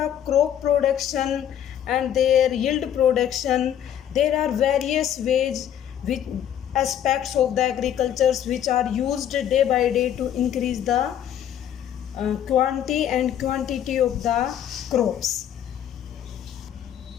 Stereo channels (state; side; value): quieter; right; 10.2 dB